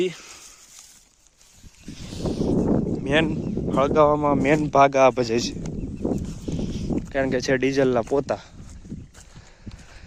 મેન હળગાવવામાં મેન ભાગ આ ભજે છે, કારણ કે છે ડીઝલના પોતા.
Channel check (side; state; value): both; identical; correlation 1.00